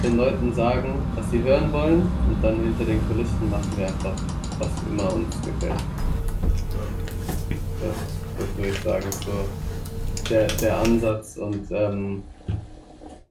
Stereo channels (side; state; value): both; identical; correlation 1.00